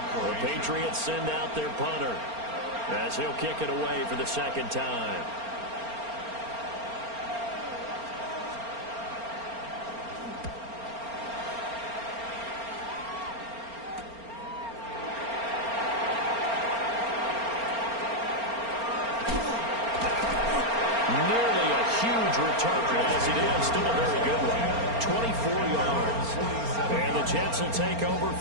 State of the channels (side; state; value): left; late; 4.3 ms